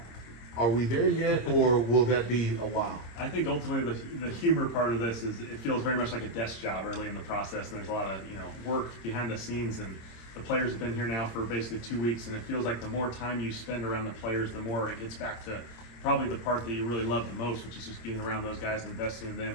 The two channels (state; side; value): late; right; 26 ms